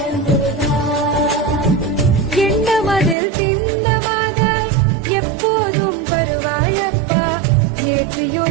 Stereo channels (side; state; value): left; drops out; at 3.2 s